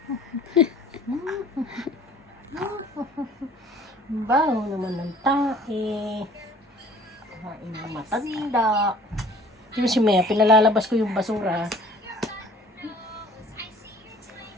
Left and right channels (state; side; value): normal; both; correlation 0.51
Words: Baho naman ng tae. Kain ng matanda. Yung si Mea, pinalalabas ko yung basura.